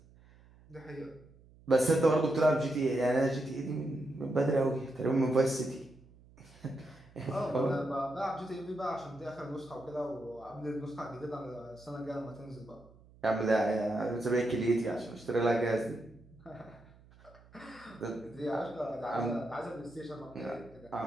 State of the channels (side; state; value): right; noise; hum, 25 dB below the sound